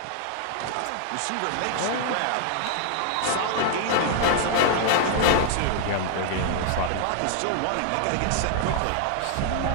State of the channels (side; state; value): both; different; correlation 0.00